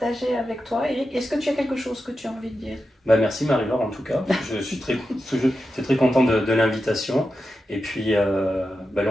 avec toi. Eric, est-ce que tu as quelque chose que tu as envie de dire? Bah, merci Marie-Laure en tout cas. Je suis très content de l'invitation. Et puis, bah,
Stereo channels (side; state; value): both; normal; correlation 0.90